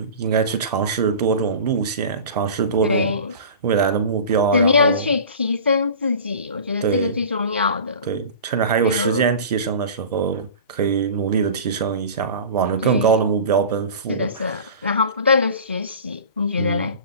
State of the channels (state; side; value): inverted; both; correlation -0.37